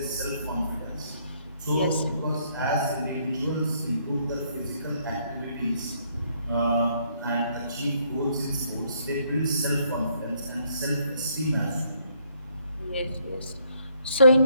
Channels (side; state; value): both; inverted; correlation -0.69